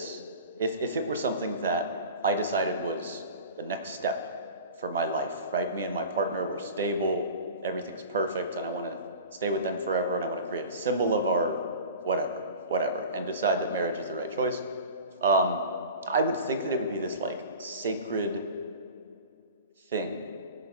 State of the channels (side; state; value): both; inverted; correlation -0.37